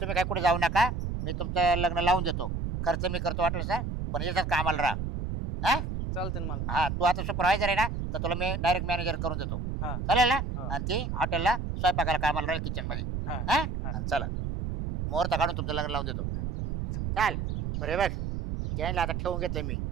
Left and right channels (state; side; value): noise; right; rumble, 3 dB below the sound